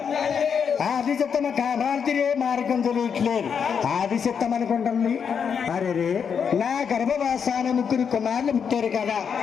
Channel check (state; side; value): quieter; right; 6.9 dB